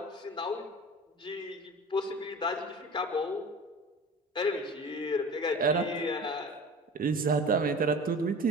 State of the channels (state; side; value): normal; both; correlation 0.38